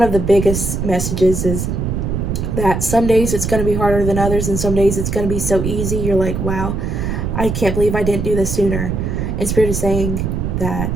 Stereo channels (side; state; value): right; noise; rumble, 2 dB below the sound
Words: of the biggest messages is that some days it's going to be harder than others, and some days it's going to be so easy. You're like, wow, I can't believe I didn't do this sooner. And Spirit is saying